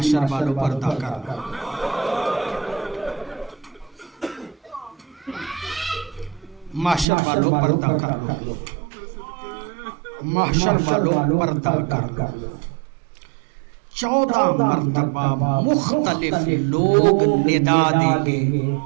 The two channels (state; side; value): drops out; left; at 7.1 s